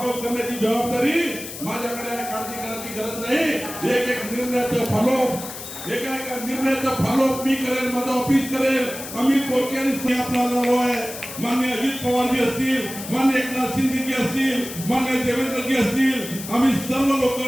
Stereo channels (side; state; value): left; noise; hiss, 10 dB below the sound